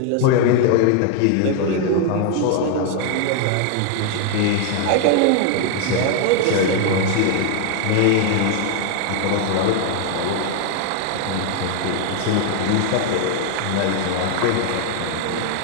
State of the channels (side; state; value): both; different; correlation 0.00